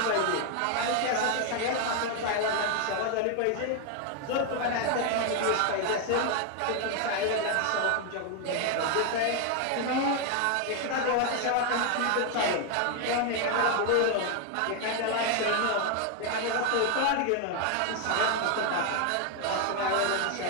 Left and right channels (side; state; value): both; different; correlation 0.01